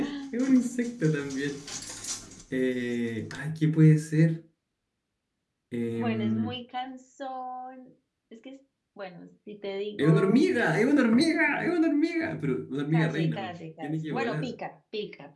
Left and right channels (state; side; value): identical; both; correlation 1.00